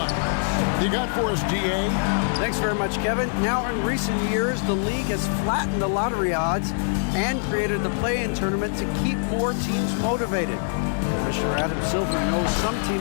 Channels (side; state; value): right; silent; digital silence